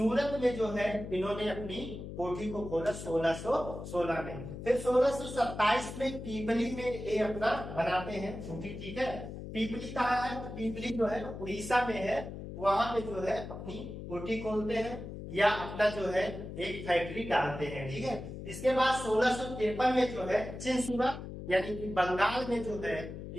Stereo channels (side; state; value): left; noise; hum, 9 dB below the sound